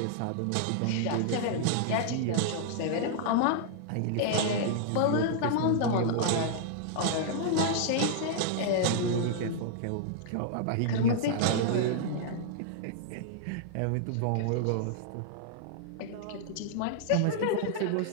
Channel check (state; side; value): different; both; correlation -0.01